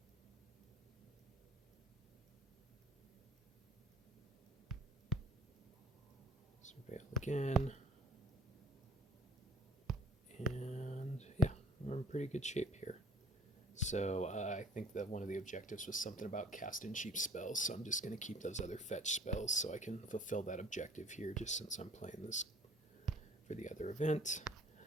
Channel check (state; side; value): normal; both; correlation 0.52